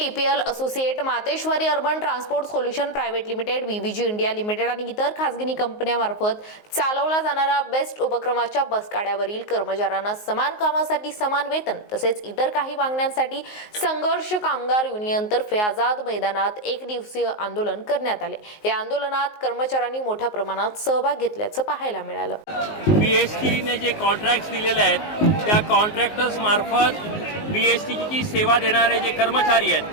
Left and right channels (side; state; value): right; late; 19 ms